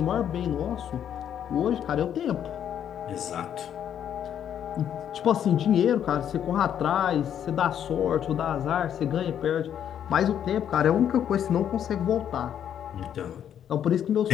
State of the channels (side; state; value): right; quieter; 9.5 dB